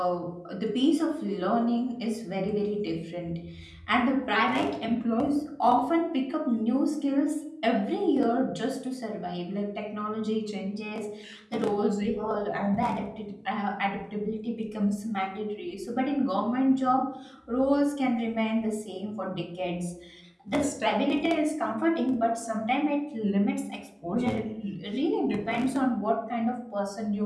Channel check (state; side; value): identical; both; correlation 1.00